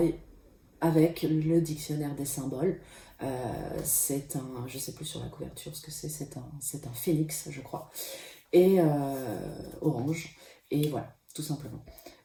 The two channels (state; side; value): identical; both; correlation 1.00